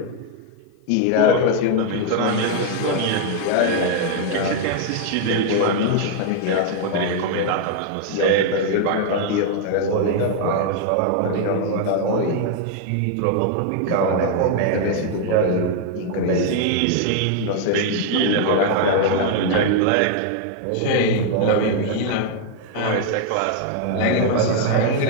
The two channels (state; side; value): different; both; correlation 0.00